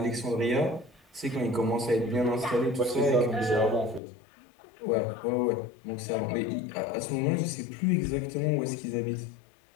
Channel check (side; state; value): right; drops out; at 4.0 s